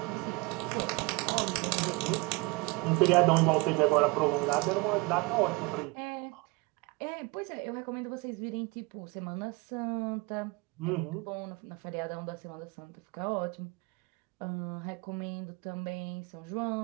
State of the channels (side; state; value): left; quieter; 25.0 dB